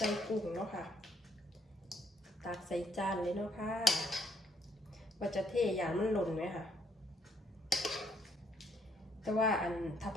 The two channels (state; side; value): normal; both; correlation 0.70